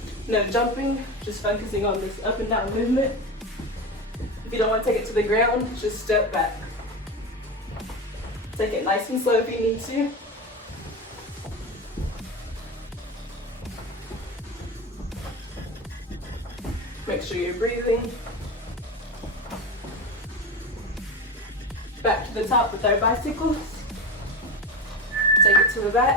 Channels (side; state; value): both; normal; correlation 0.23